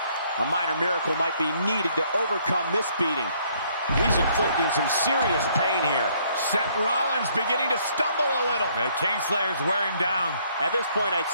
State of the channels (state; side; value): inverted; both; correlation -0.65